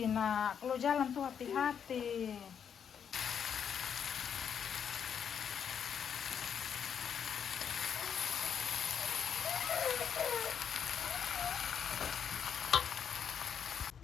nak, kalau jalan tuh hati-hati.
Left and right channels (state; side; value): quieter; right; 7.8 dB